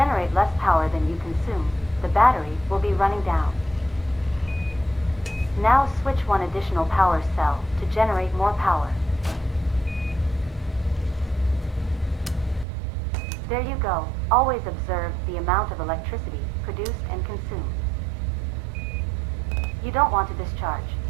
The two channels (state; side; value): drops out; left; at 12.7 s